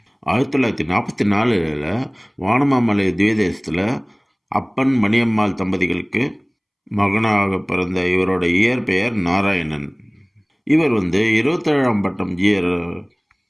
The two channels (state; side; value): identical; both; correlation 1.00